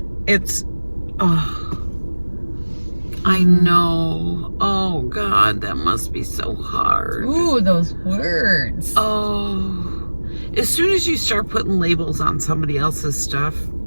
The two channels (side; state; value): both; inverted; correlation -1.00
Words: It's, I know. Oh God, that must be so hard. Ooh, those words. Oh, as soon as you start putting labels on somebody else's stuff,